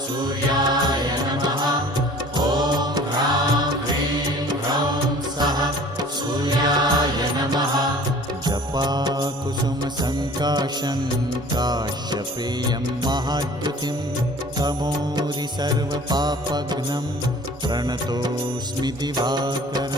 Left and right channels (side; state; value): both; normal; correlation 0.47